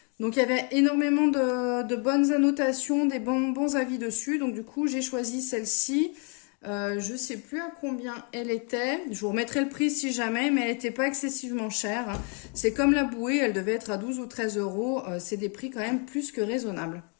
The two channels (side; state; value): right; quieter; 38.0 dB